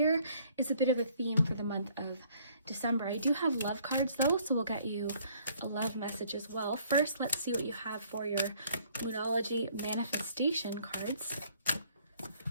is a bit of a theme for the month of December. I do have love cards though, so we'll get you a love message as well. First, let's see what you have for your Moonology manifestation cards.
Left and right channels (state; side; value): inverted; both; correlation -0.62